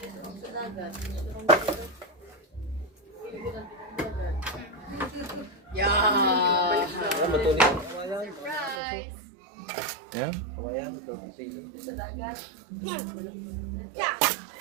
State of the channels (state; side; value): drops out; left; at 8.8 s